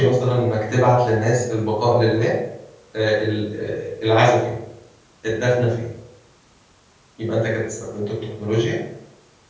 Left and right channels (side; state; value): both; identical; correlation 1.00